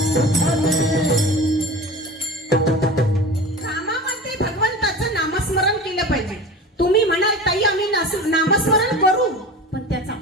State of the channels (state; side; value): normal; both; correlation 0.34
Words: कामामध्ये भगवंताचं नामस्मरण केलं पाहिजे. तुम्ही म्हणाल ताई आम्ही नामस्मरण करू, पण त्याचा